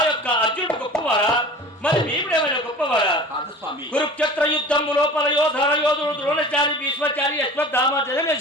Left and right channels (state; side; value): normal; both; correlation 0.39